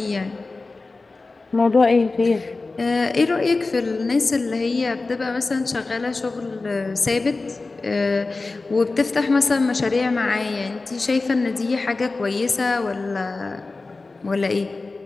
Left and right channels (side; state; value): right; quieter; 3.6 dB